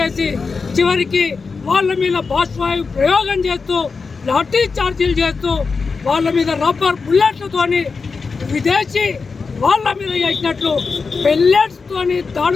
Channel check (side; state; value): right; quieter; 4.7 dB